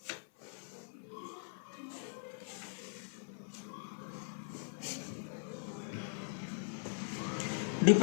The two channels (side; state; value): right; silent; 51 dB below the other